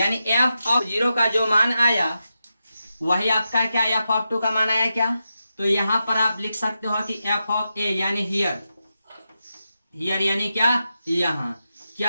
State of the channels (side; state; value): both; inverted; correlation -0.88